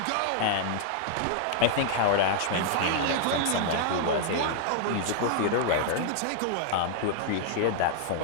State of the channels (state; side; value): different; both; correlation -0.01